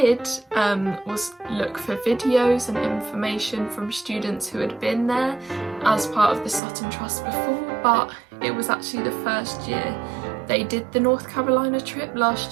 was look for videos and information from students who had been there as part of the Sutton Trust before, but it was actually the first year they did the North Carolina trip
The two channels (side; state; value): left; drops out; at 6.6 s